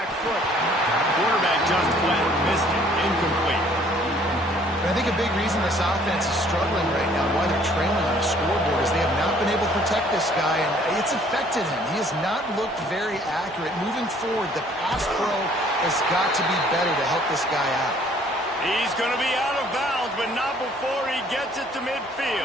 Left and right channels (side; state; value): both; normal; correlation 0.59